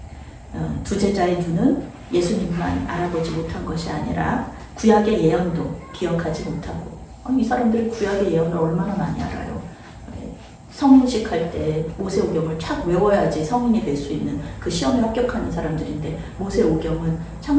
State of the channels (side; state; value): both; identical; correlation 1.00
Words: 두 제자의 눈은 예수님만 알아보지 못한 것이 아니라 구약의 예언도 기억하지 못하고, 이 사람들이 구약의 예언을 얼마나 많이 알아요. 성인식 할 때 모세오경을 착 외워야지 성인이 될 수 있는 그 시험에 합격하는 사람들인데, 모세오경은